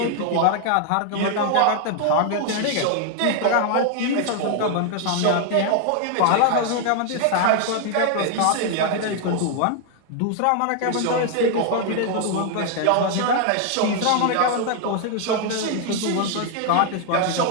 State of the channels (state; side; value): different; both; correlation 0.00